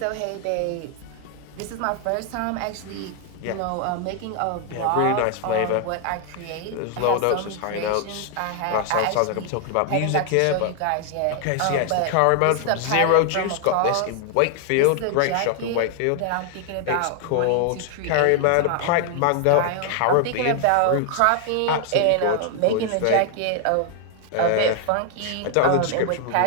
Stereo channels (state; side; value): different; both; correlation 0.00